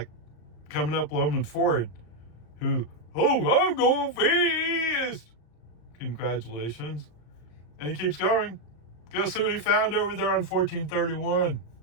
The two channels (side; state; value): right; late; 34 ms